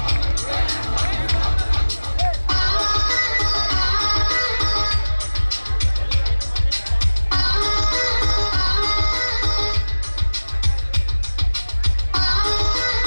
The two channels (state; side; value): inverted; both; correlation -1.00